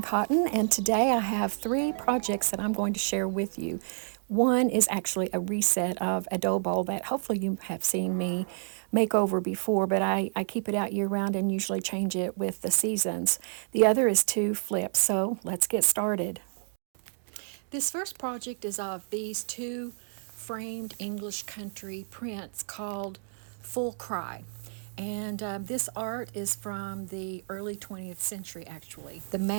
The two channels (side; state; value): left; silent; digital silence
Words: Cotton, and today I have 3 projects that I'm going to share with you. One is actually a reset of a dough bowl that hopefully you have seen me make over before, but I keep it out year round and usually change it with the seasons. The other is 2 flips, so let's get started. This first project is of these 2 framed English country prints called Full Cry. And this art is from the early 20th century, actually. The